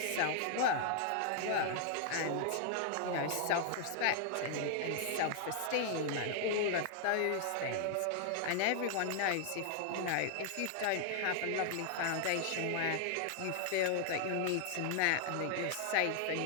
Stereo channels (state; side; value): different; both; correlation 0.00